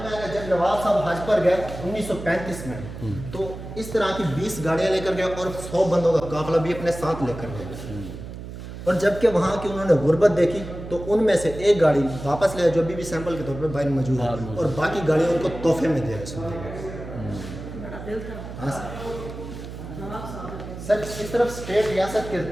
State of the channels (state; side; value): noise; right; hum, 11 dB below the sound